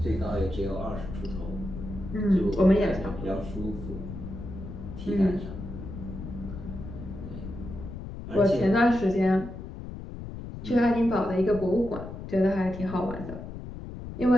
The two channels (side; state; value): left; noise; rumble, 10 dB below the sound